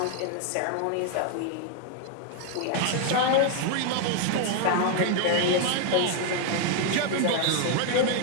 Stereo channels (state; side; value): different; both; correlation 0.00